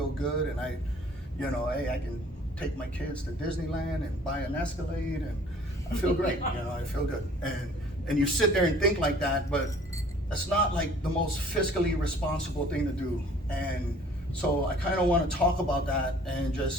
good. And I, you know, hey, I can take my kids to Disneyland and buy an Escalade, and I feel great. You know, I feel good. And you sit there and think like that, but that's not like the most fiscally responsible thing to do. And so I kind of want to talk about that, and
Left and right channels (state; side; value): normal; both; correlation 0.53